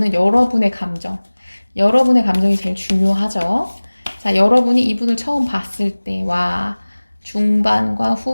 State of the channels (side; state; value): both; inverted; correlation -1.00